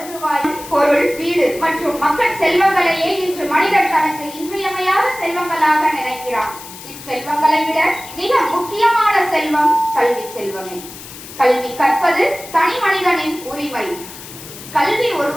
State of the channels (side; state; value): left; noise; hiss, 15 dB below the sound